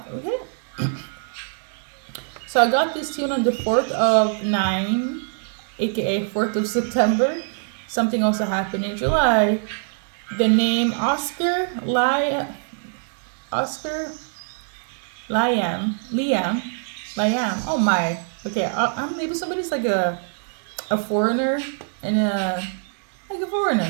Okay. So I got this tune on the 4th of 9, aka 4th of September. Something also happened in July. The name Oscar Liam. Oh my. Okay, maybe somebody's like a foreigner and like a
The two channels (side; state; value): left; silent; 61 dB below the other